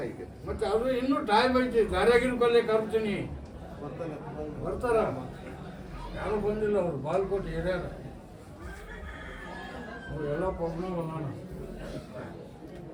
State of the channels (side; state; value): both; identical; correlation 1.00